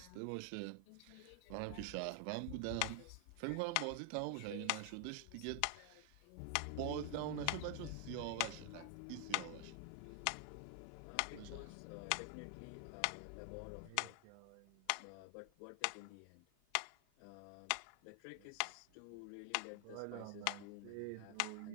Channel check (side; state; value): both; different; correlation 0.00